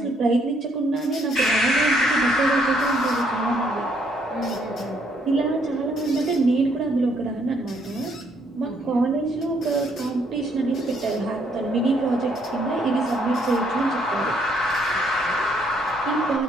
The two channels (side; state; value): both; normal; correlation 0.69